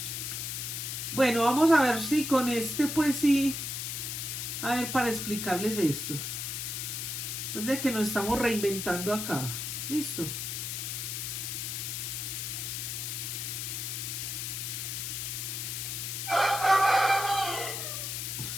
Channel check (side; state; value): left; noise; hiss, 4 dB below the sound